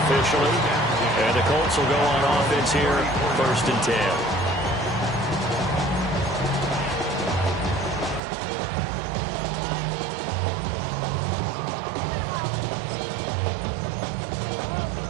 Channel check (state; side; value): drops out; left; at 8.2 s